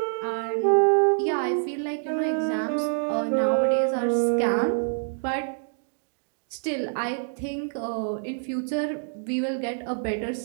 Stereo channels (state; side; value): silent; left; digital silence